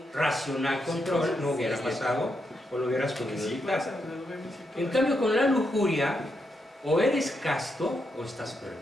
racional control, no hubiera pasado, o lo hubieras podido evitar. En cambio, con la lujuria, o eres casto o estás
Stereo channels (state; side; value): normal; both; correlation 0.82